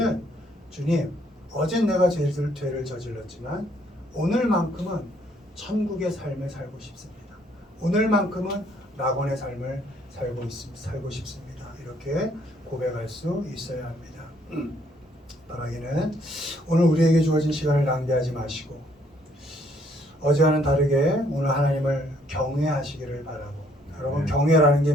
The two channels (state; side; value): normal; both; correlation 0.66